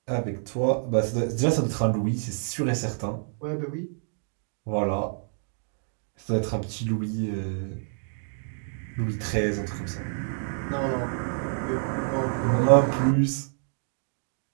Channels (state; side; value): silent; left; digital silence